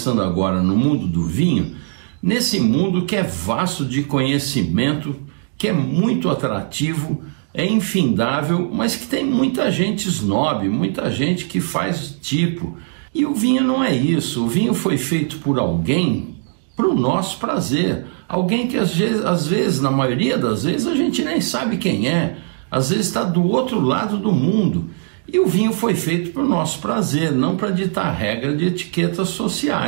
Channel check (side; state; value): left; silent; digital silence